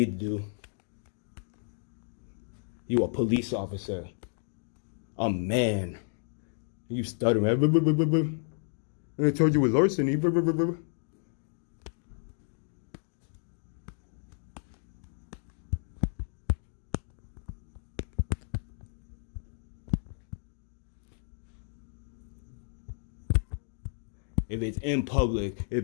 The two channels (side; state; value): right; silent; 56 dB below the other